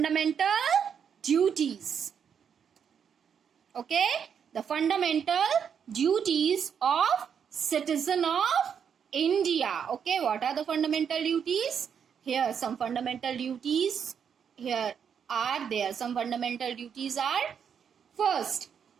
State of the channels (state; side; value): quieter; left; 7.5 dB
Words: duties. Okay, the fundamental duties of citizen of India. Okay, what are the fundamental duties? Here some fundamental duties here are there. Some fundamental duties are, first,